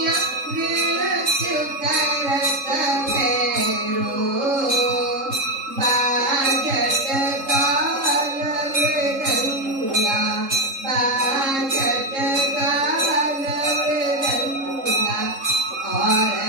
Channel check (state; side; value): late; left; 3.7 ms